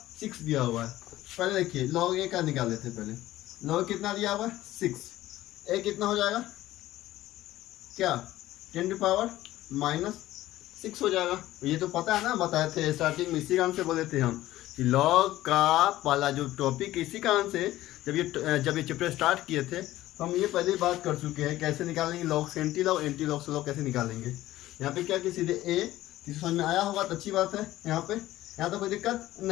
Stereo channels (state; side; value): quieter; right; 15.4 dB